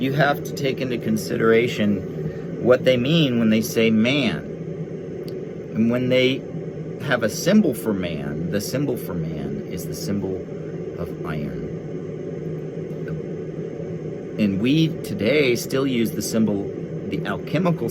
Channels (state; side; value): identical; both; correlation 1.00